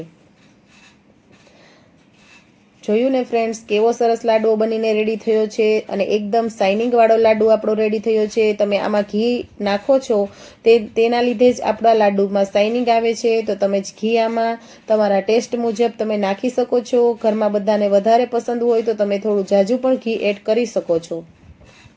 જોયું ને ફ્રેન્ડ્સ કેવો સરસ લાડવો બનીને રેડી થયો છે અને એકદમ શાઇનિંગ વાળો લાડુ આપણો રેડી થયો છે. તમે આમાં ઘી નાખો છો તેના લીધે જ આપણા લાડુમાં શાઇનિંગ આવે છે. તો તમે ઘી આમાં તમારા ટેસ્ટ મુજબ તમે નાખી શકો છો. ઘરમાં બધાને વધારે પસંદ હોય તો તમે થોડું ઝાઝું પણ ઘી એડ કરી શકો છો.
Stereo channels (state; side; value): identical; both; correlation 1.00